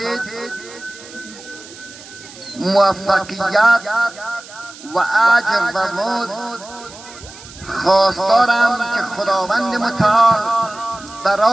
موفقیت و اجر و مزد خواستارم که خداوند متعال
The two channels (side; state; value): right; noise; hiss, 18 dB below the sound